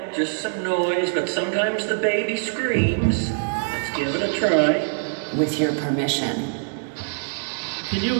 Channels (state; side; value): silent; left; 63 dB below the other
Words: just some noise, but sometimes the baby screams. Let's give it a try. With your permission. Can you